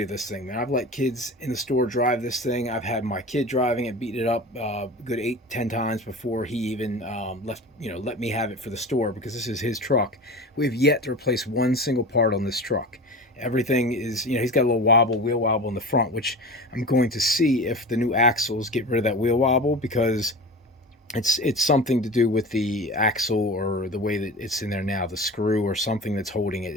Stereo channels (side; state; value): both; normal; correlation 0.32